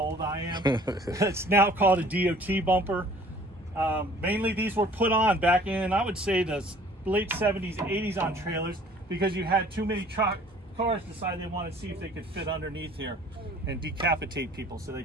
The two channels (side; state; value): both; normal; correlation 0.52